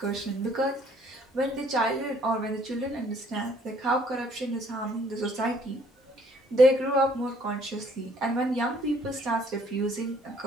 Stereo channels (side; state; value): both; normal; correlation 0.62